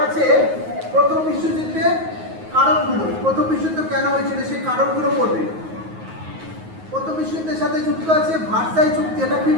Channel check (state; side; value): late; left; 9.4 ms